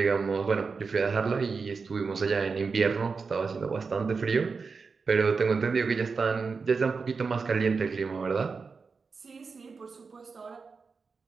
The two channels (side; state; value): left; quieter; 4.9 dB